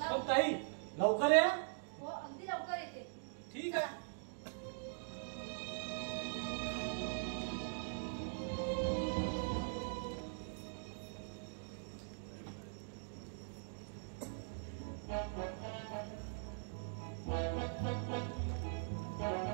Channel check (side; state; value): left; silent; digital silence